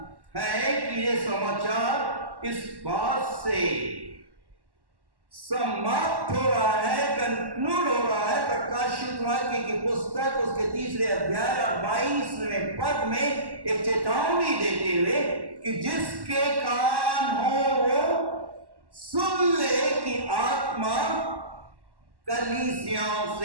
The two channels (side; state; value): left; late; 1.1 ms